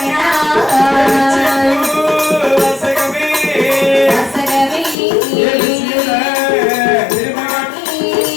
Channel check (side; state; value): right; drops out; at 5.0 s